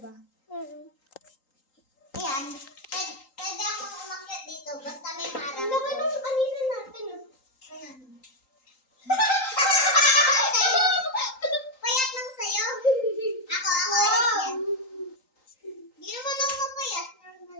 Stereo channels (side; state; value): right; late; 3.8 ms